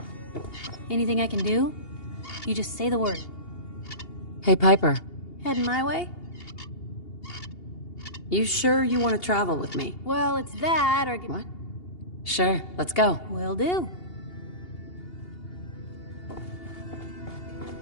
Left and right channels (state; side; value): late; right; 2.8 ms